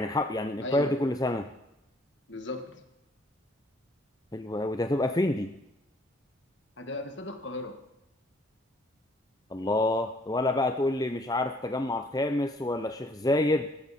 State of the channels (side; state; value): both; normal; correlation 0.62